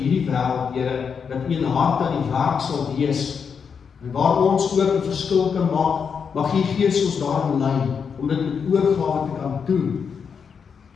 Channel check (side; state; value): right; quieter; 6.4 dB